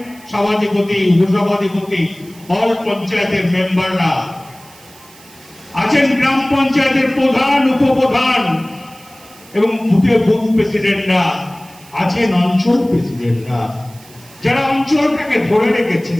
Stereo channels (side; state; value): right; noise; hiss, 24 dB below the sound